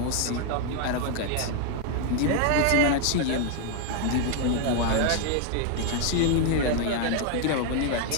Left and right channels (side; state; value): both; different; correlation 0.01